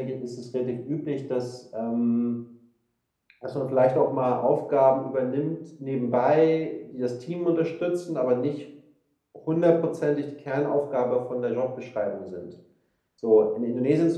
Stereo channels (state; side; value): identical; both; correlation 1.00